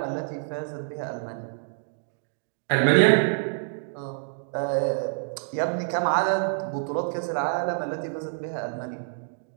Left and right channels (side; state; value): left; silent; digital silence